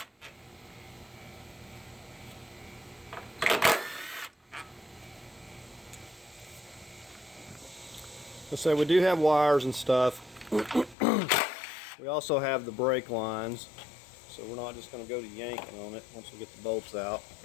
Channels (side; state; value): right; drops out; at 11.0 s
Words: Let's say we do have wires and stuff. We also have the brake lines, so we're not just going to go to yanking on it once we get the bolts out.